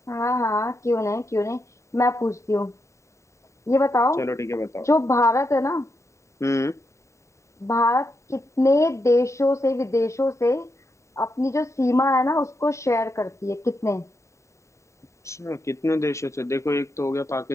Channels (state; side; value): late; right; 0.14 ms